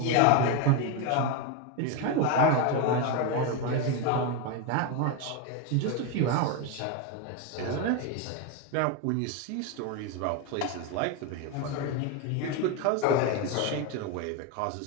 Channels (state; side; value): different; both; correlation 0.03